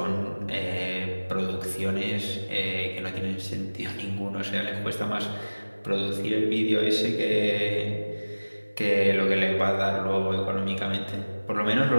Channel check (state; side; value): inverted; both; correlation -1.00